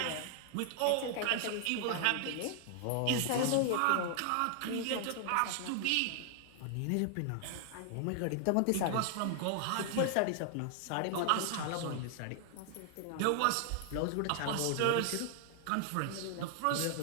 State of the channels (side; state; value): both; different; correlation 0.00